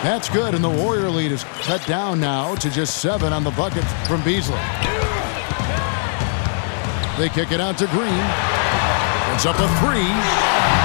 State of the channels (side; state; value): right; silent; digital silence